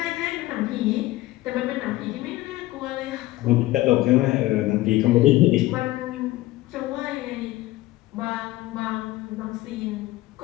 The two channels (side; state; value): right; quieter; 17.4 dB